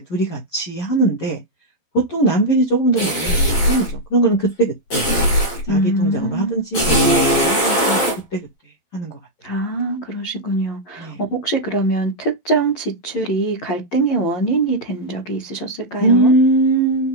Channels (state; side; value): late; right; 12 ms